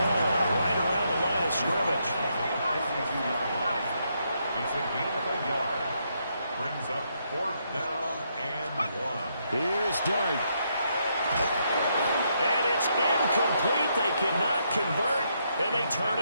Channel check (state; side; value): inverted; both; correlation -0.77